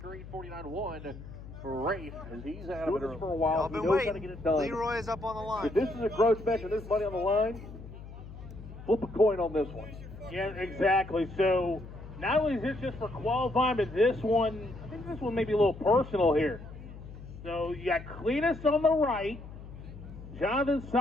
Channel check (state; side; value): noise; left; hum, 14 dB below the sound